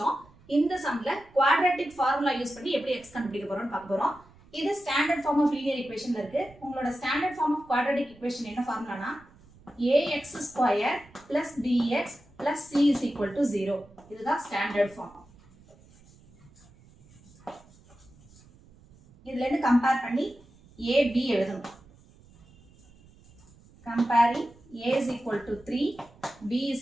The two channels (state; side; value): noise; right; rumble, 26 dB below the sound